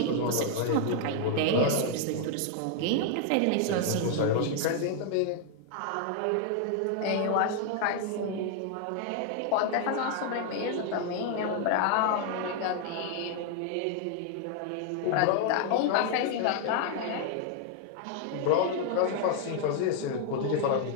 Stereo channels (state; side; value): different; both; correlation 0.00